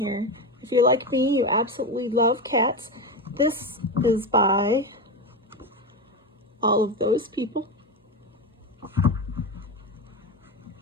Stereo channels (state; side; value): normal; both; correlation 0.17